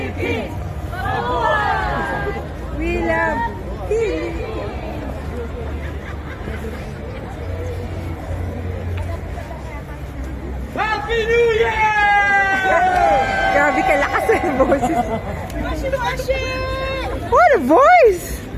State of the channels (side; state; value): both; identical; correlation 1.00